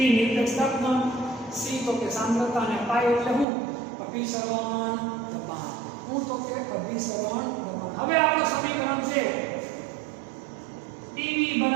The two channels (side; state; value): left; drops out; at 3.5 s